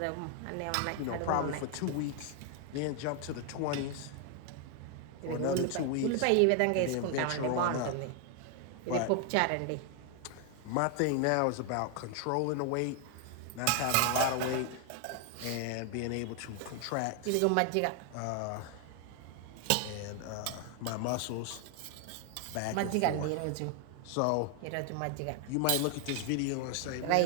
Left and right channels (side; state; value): both; different; correlation 0.00